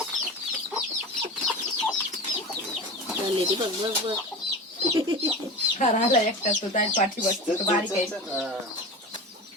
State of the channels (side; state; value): both; normal; correlation 0.30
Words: राहिला एकटाच तो जाईल पाठी बसतो. तो बारीक आहे.